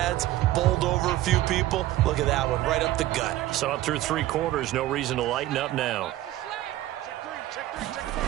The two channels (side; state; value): left; quieter; 15.0 dB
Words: bowled over a few people. Look at that one, right up the gut. Saw it through 3 quarters. No reason to lighten up now.